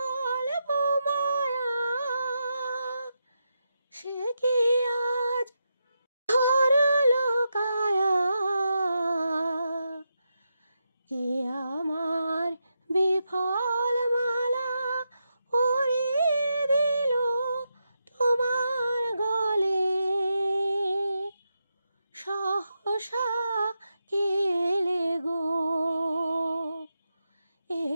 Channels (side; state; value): both; inverted; correlation -0.86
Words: মায়া, সে কি আজ ধরল কায়া। কে আমার বিফল মালা পরিয়ে দিল তোমার গলে। সহসা কেলে গো, এ